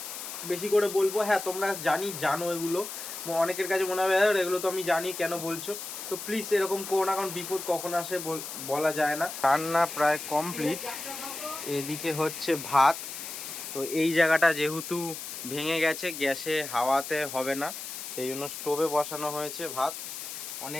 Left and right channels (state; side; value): noise; left; hiss, 8 dB below the sound